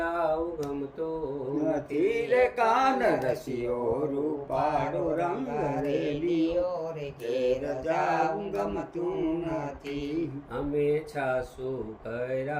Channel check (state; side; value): identical; both; correlation 1.00